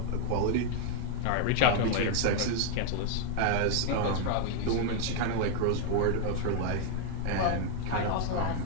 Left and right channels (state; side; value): different; both; correlation 0.00